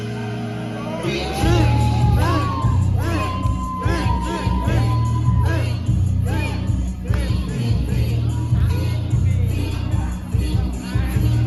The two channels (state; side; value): identical; both; correlation 1.00